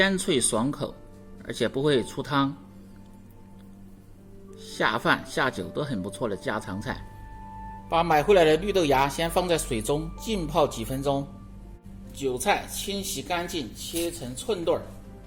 脆爽口，而且不会出汤，下饭下酒都很不错的家常菜。把买回来的绿豆芽先放在水中浸泡几分钟，韭菜清洗干净，切成寸段。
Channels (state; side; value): identical; both; correlation 1.00